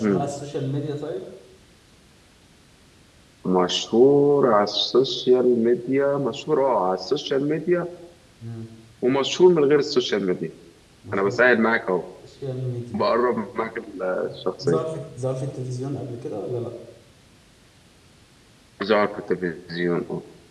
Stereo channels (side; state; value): both; identical; correlation 1.00